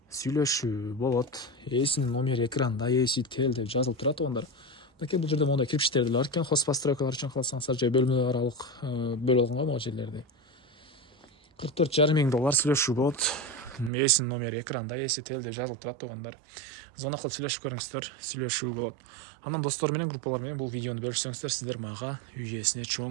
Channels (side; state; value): left; drops out; at 13.9 s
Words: Сүйлөшүү болот. Эсинин номери экранда, эси тел деп жазылып турат тугандар. Бул жерде мондай кирпичтер деле бар экен. Хозпостройкалар үчүн калсаңыздар же бөлмө аралык бөлүп алган могу жерлерди. $44,5 миң сүйлөшүү болот. Эсинин номери экранда, эси тел деп жазылып турат тугандар. Звонок кылып сүйлөшүп көрүңүздөр, сүйлөшүү болот. Анан достор менен, группалар менен бул видеону бөлүшсөңүздөр, сиздер мага үй ээсине